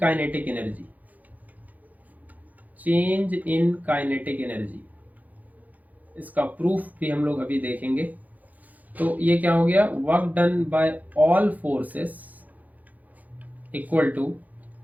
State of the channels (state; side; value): late; left; 0.079 ms